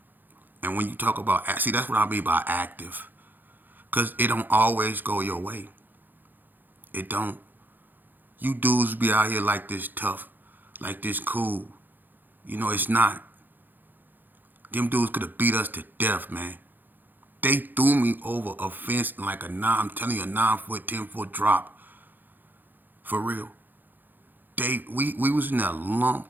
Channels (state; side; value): late; left; 0.088 ms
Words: And when you talk about, see, that's what I mean by active. Because it don't always go your way. It don't. You dudes be out here like this tough, like this cool. You know, it's not. Them dudes could have beat us to death, man. They threw me over a fence like I'm telling you, a 9-foot, 10-foot drop. For real. We was in there